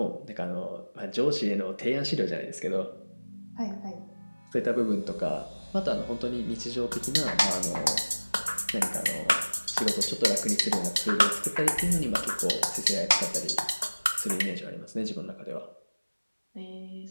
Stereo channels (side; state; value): both; inverted; correlation -1.00